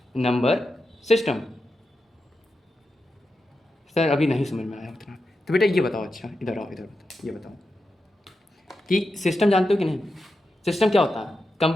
number system. Sir अभी नहीं समझ में आया उतना। तो बेटा ये बताओ, अच्छा इधर आओ, इधर बताओ, ये बताओ कि सिस्टम जानते हो कि नहीं? सिस्टम क्या होता है?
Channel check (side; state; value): both; normal; correlation 0.89